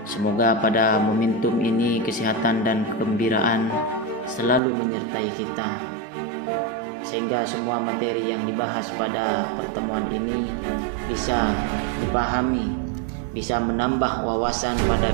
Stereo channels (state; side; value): drops out; left; at 4.6 s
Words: Semoga pada momentum ini kesehatan dan kegembiraan selalu menyertai kita, sehingga semua materi yang dibahas pada pertemuan ini bisa dipahami, bisa menambah wawasan